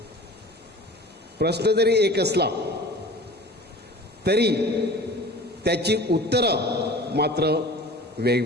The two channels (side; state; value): both; normal; correlation 0.41